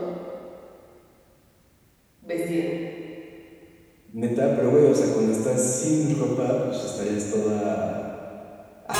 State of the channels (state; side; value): identical; both; correlation 1.00